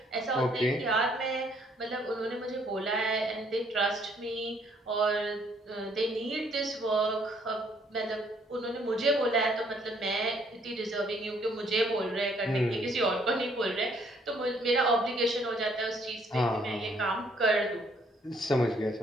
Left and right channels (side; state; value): both; normal; correlation 0.65